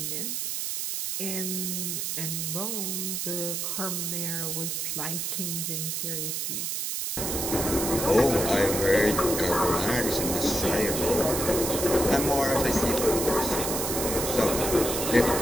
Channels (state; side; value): noise; right; hiss, 2 dB below the sound